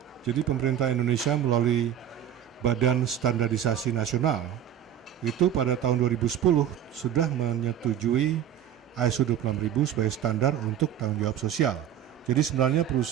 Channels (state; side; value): quieter; left; 10.1 dB